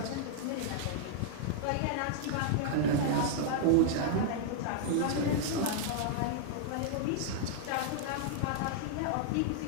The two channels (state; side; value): different; both; correlation -0.01